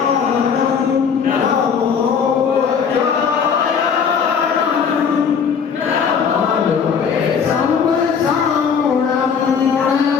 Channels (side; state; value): right; quieter; 6.6 dB